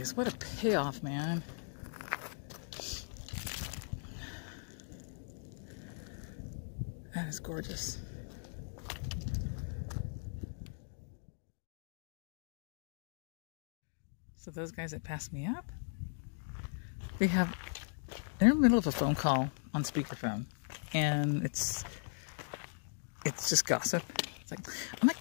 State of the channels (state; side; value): silent; right; digital silence